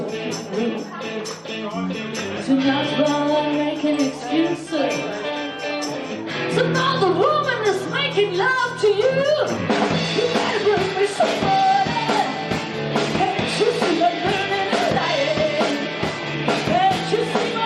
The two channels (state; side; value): identical; both; correlation 1.00